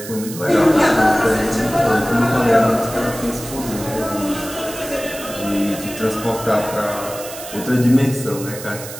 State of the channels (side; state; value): right; noise; hiss, 12 dB below the sound